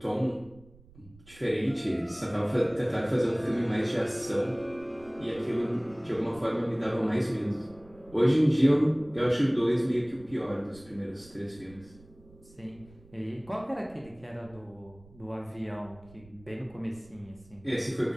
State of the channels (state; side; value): noise; right; rumble, 24 dB below the sound